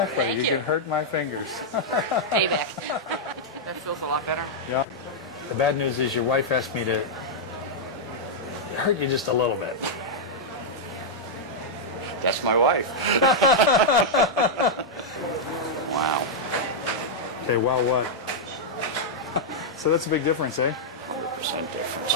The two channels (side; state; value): both; normal; correlation -0.06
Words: Thank You can hurt my fingers. Payback. That feels a lot better. Yeah. The bad news is your wife asked me to hurt you just a little bit. That's my wife. Wow. Okay, well, what? So that's a big difference, eh? 100% difference.